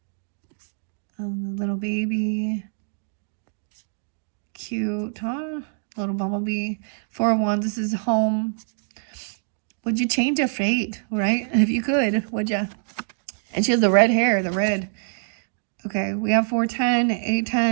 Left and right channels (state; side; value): silent; left; digital silence